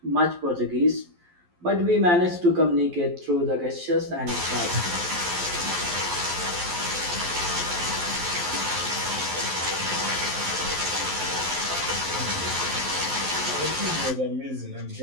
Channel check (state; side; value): late; left; 11 ms